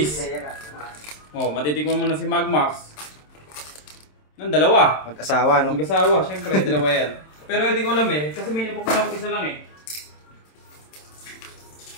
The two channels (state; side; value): late; right; 27 ms